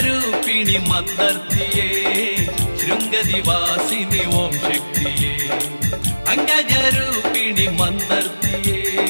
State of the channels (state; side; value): inverted; both; correlation -1.00